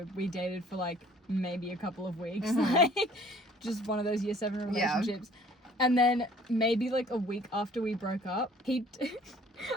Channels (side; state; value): both; normal; correlation 0.54